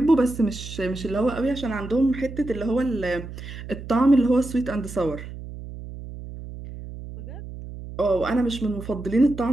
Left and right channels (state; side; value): noise; right; hum, 11 dB below the sound